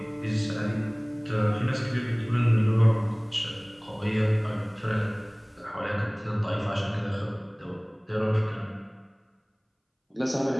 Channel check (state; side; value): identical; both; correlation 1.00